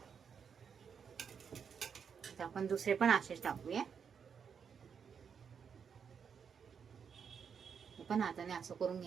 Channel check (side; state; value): left; quieter; 6.8 dB